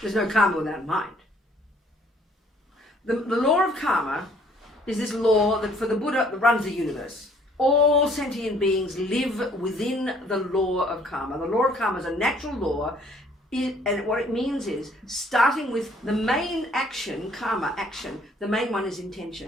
no karma without mind. The law of karma is this law that for the Buddha that runs the universe. All sentient beings live within the law of karma. The law of karma is a natural law, and what it means is, starting with the main action, karma action, the main one is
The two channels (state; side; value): normal; both; correlation 0.60